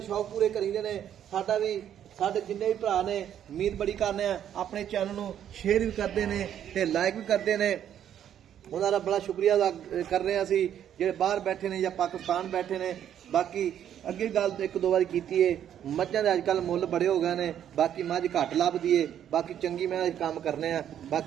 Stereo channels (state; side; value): quieter; left; 10.0 dB